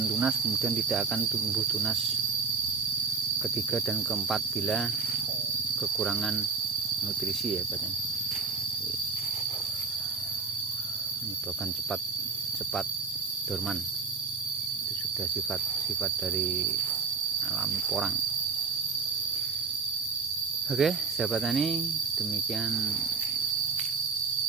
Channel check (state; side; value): quieter; left; 4.7 dB